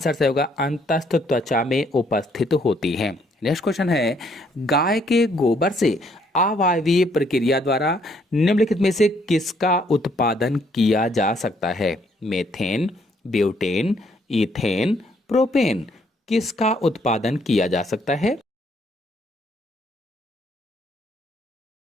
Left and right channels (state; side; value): normal; both; correlation 0.68